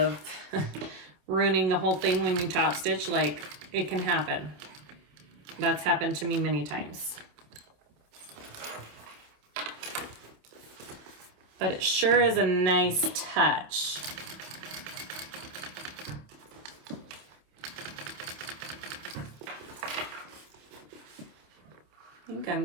ruining the whole thing when you top stitch, like, it can happen. That's happened to me many times. but it sure is a nice touch. I think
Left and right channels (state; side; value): late; left; 27 ms